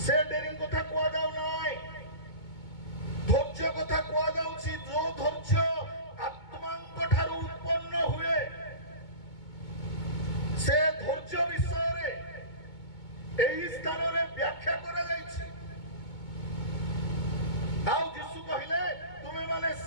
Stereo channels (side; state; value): right; late; 2.2 ms